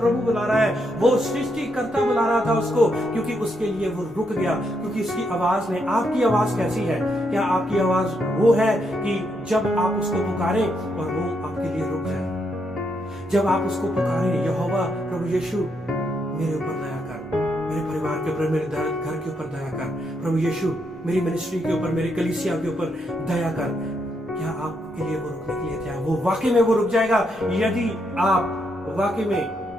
बुला रहा है। वो सृष्टिकर्ता बुला रहा था उसको, क्योंकि उसके लिए वो रुक गया, क्योंकि उसकी आवाज ने। आपकी आवाज कैसी है? क्या आपकी आवाज वो है कि जब आप उसको पुकारें और वो आपके लिए रुक जाए? जब आप उसको पुकारें, यहोवा प्रभु यीशु मेरे ऊपर दया कर, मेरे परिवार के ऊपर, मेरे घर के ऊपर दया कर, प्रभु यीशु मेरी मिनिस्ट्री के ऊपर, मेरी कलीसिया के ऊपर दया कर, क्या आपके लिए वो रुकने के लिए तैयार? वो वाकई में वो रुक जाएगा यदि आप वाकई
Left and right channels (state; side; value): normal; both; correlation 0.78